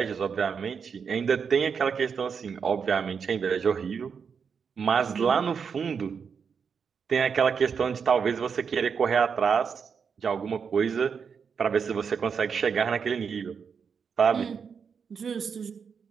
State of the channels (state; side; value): quieter; left; 6.3 dB